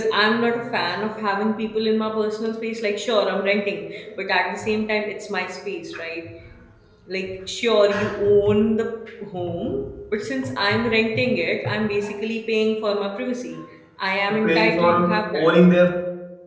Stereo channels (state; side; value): identical; both; correlation 1.00